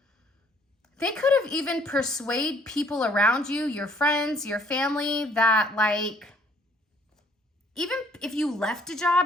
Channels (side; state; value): both; normal; correlation 0.61